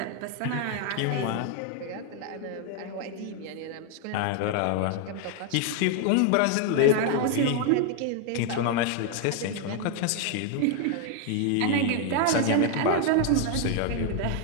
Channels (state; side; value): different; both; correlation 0.00